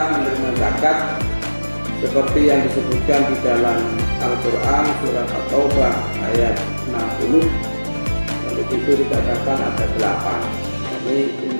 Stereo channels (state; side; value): inverted; both; correlation -1.00